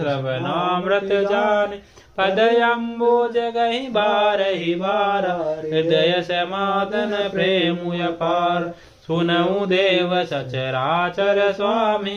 जाने। पदयम्बुज गहि बारहि बारा हृदय समादन प्रेमु अपार। सुनऊ देव सचराचर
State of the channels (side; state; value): both; identical; correlation 1.00